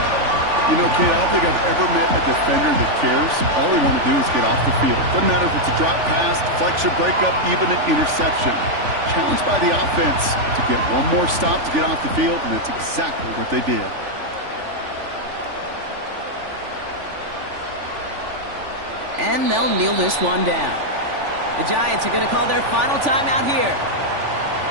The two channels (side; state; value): left; late; 3.4 ms